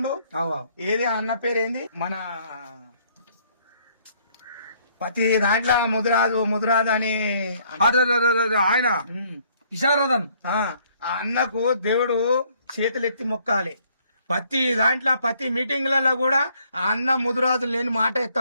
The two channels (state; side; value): inverted; both; correlation -0.65